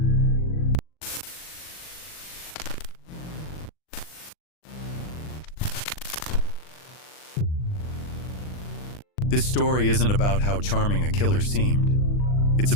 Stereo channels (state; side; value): late; right; 39 ms